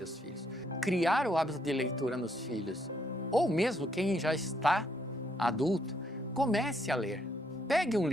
filhos. Criar o hábito de leitura nos filhos, ou mesmo quem já está adulto, comece a ler. Pegue um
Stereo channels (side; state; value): both; normal; correlation 0.72